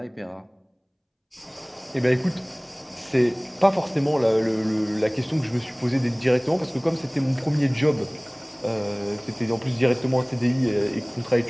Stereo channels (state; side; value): identical; both; correlation 1.00